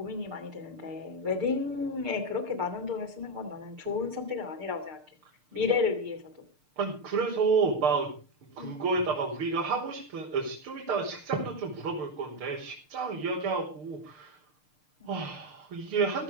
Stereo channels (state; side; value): late; left; 6.6 ms